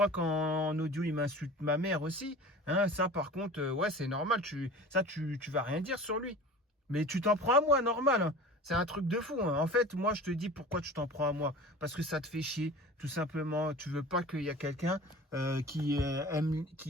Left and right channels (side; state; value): both; normal; correlation 0.39